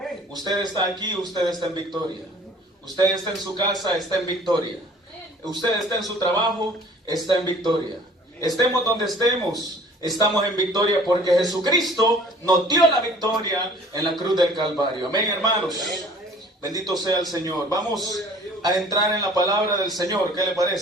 Usted está aquí, usted está en victoria. Usted está en su casa, está en victoria. Usted está en su trabajo, está en victoria. Estemos donde estemos, estamos en victoria porque Jesucristo nos dio la victoria en la cruz del Calvario. Amén, hermanos. Bendito sea el Señor. Vamos a entrar en la palabra del Señor. ¿Qué le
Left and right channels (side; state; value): both; normal; correlation 0.51